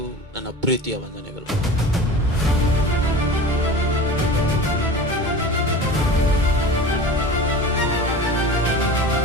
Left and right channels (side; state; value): both; normal; correlation 0.36